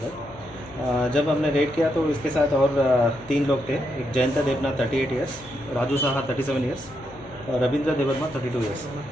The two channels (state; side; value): noise; left; hum, 21 dB below the sound